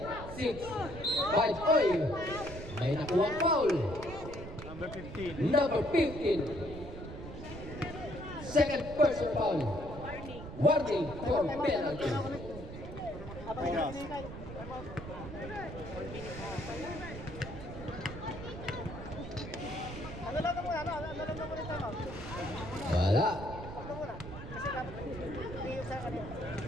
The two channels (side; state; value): right; noise; rumble, 10 dB below the sound